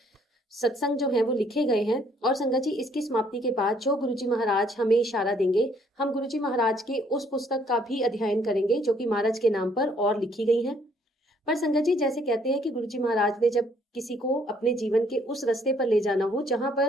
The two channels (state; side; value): normal; both; correlation 0.65